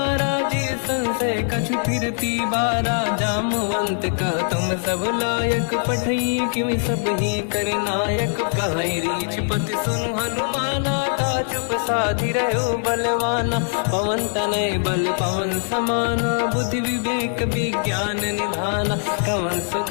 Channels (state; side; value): silent; right; 64 dB below the other